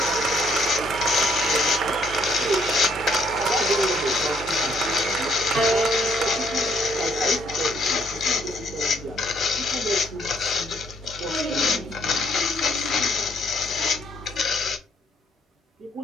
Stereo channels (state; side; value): normal; both; correlation 0.68